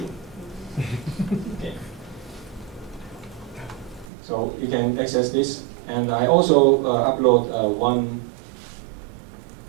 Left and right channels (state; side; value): drops out; left; at 4.1 s